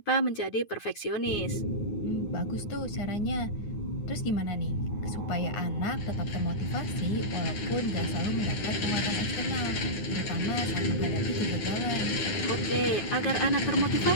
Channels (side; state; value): right; late; 9.6 ms